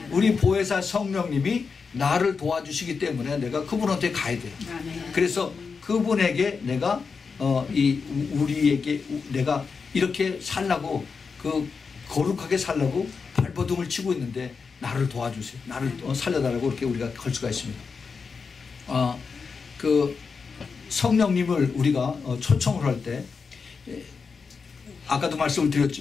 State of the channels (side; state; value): right; quieter; 5.2 dB